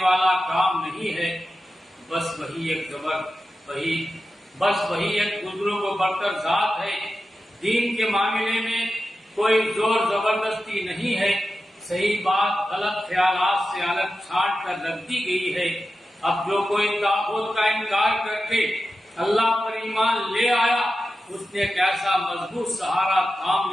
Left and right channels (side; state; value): both; normal; correlation 0.92